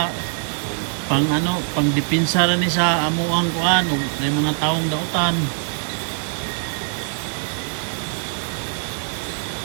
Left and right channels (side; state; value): left; silent; digital silence